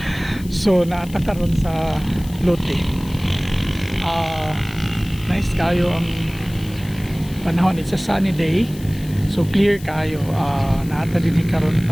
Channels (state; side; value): noise; left; hiss, 19 dB below the sound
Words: So naata karon sa Lote. Nice kayo ang panahon. It's a sunny day. So clear kayo. Naata din karon